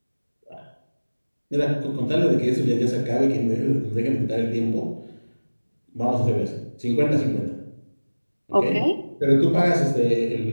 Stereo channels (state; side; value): inverted; both; correlation -1.00